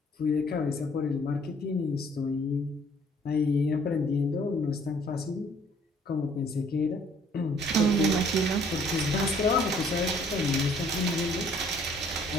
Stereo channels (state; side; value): normal; both; correlation 0.59